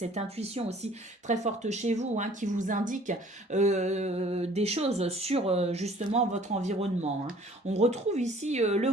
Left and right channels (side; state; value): both; normal; correlation 0.53